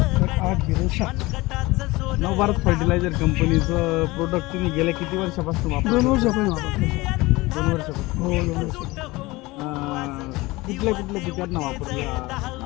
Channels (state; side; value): quieter; right; 21.3 dB